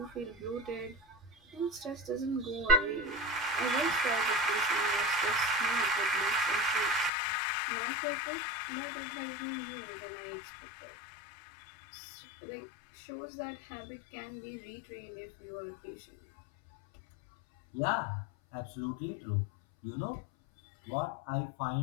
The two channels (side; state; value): right; drops out; at 7.1 s